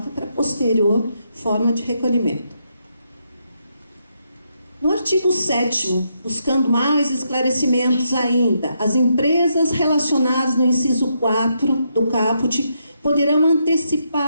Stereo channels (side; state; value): both; inverted; correlation -0.79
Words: para posterior forma de recolhimento. No artigo 7º, buscando mais esclarecimentos ainda, as empresas relacionadas no inciso 4 do caput poderão